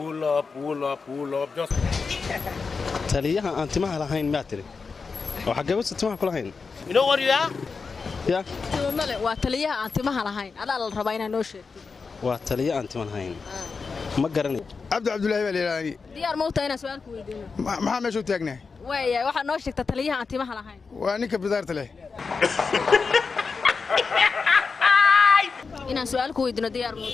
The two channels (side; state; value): right; quieter; 4.8 dB